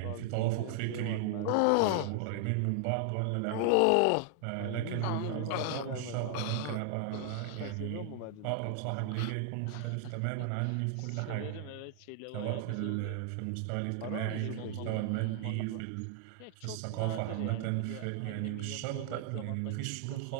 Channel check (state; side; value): different; both; correlation 0.00